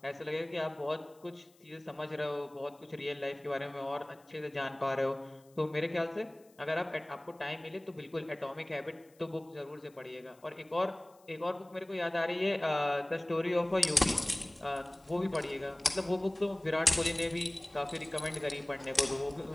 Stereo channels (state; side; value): noise; left; hiss, 30 dB below the sound